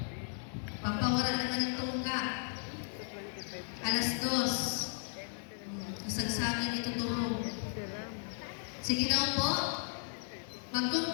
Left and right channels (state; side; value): silent; right; digital silence